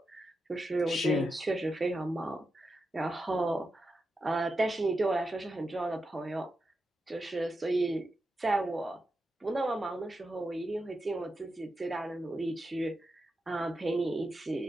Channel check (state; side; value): normal; both; correlation 0.88